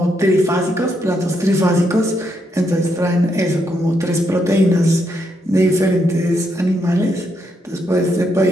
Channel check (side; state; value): both; normal; correlation 0.78